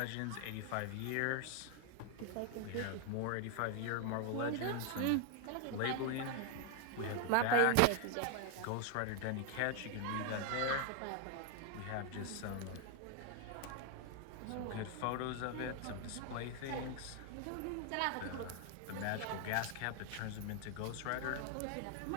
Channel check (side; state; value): both; different; correlation 0.00